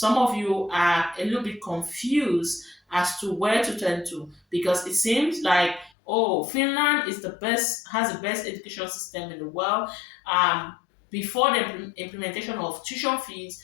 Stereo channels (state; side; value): drops out; right; at 5.9 s